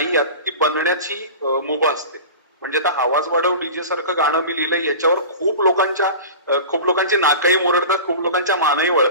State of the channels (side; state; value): both; inverted; correlation -0.34